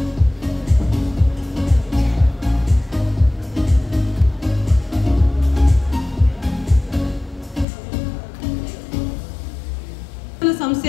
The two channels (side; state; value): right; drops out; at 7.7 s